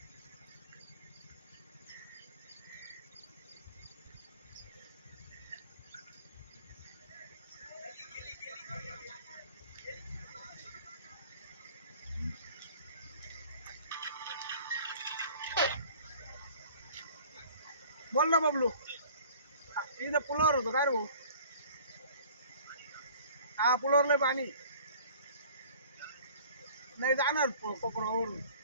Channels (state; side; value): inverted; both; correlation -0.49